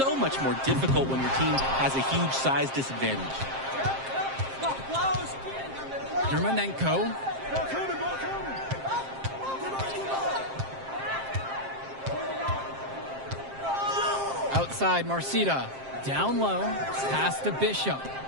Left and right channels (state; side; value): late; left; 7.5 ms